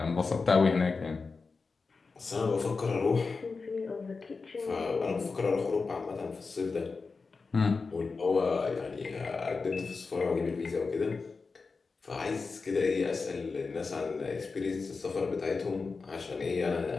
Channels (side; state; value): right; quieter; 4.4 dB